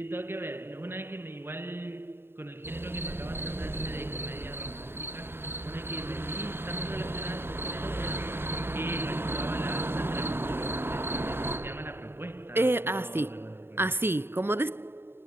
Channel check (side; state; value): left; late; 0.11 ms